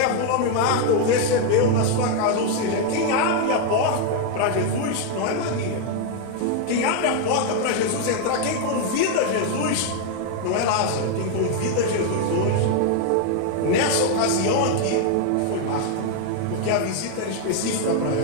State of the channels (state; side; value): different; both; correlation 0.00